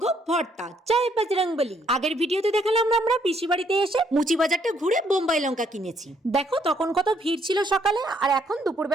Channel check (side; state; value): both; normal; correlation 0.69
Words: Bharta. জয় বজরংবলী। আগের ভিডিওতে দেখালাম আমরা পিসি বাড়িতে এসে মুচি বাজারটা ঘুরে বোম্বাই লঙ্কা কিনেছি। দেখো তখন কত ভিড় ছিল সকালে, আর এখন